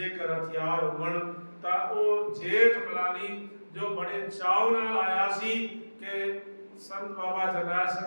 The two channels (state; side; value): inverted; both; correlation -1.00